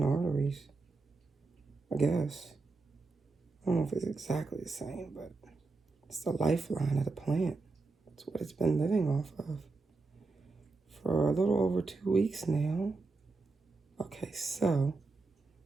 arteries, I guess. I don't know if it's exactly the same, but it's the lifeline of the plant. It's what it's been living off of for a little over 2 weeks now. Okay, so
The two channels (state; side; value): quieter; left; 3.8 dB